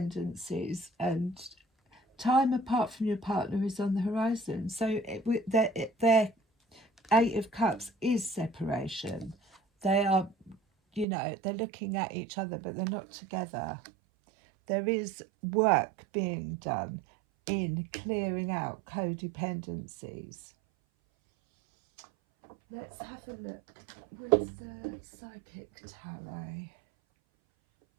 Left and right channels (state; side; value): drops out; left; at 11.1 s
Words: and time apart from your partner is on the horizon. So their Eight of Cups is separation. They are, you know, they're looking at each other, but they're not together. There is work being done in clearing out codependencies. Let's have a look with the Psychic Tarot.